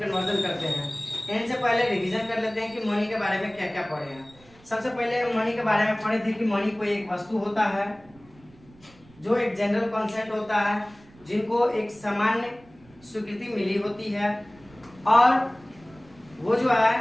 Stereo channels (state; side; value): noise; right; rumble, 26 dB below the sound